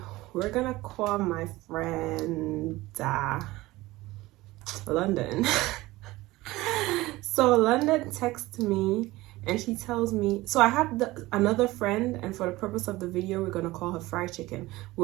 we're gonna call my friend London. So London texts me and she tells me, so I have another friend, and for the purpose of the video, we're gonna call her Fried Chicken.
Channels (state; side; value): quieter; left; 19.1 dB